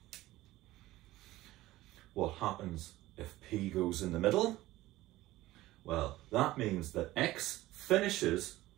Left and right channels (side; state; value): left; quieter; 17.0 dB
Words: What happens if P goes in the middle? Well, that means that X finishes